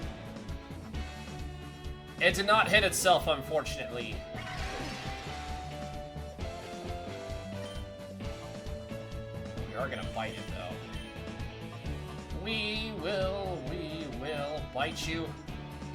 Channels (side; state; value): both; identical; correlation 1.00